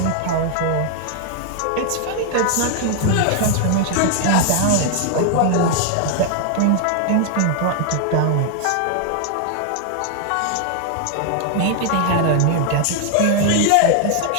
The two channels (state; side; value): different; both; correlation 0.00